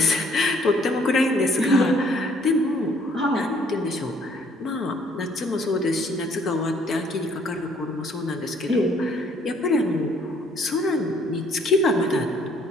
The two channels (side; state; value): both; normal; correlation 0.62